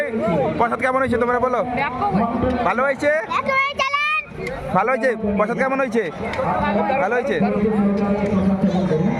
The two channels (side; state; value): both; identical; correlation 1.00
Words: প্রসাদ কেমন হয়েছে তোমরা বলো ভালো হয়েছে ভালো হয়েছে প্রসাদ কেমন হয়েছে ভালো হয়েছে